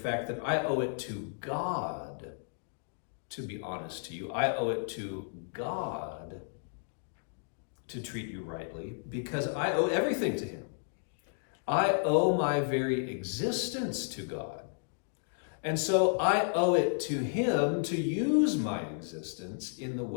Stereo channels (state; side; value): silent; right; digital silence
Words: that I owe it to God to be honest to you. I owe it to God to treat you rightly because I owe everything to him. I owe my very existence to God. And so I owe it to him to use my existence in the